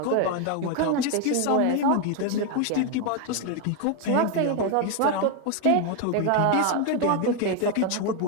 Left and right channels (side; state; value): both; different; correlation 0.01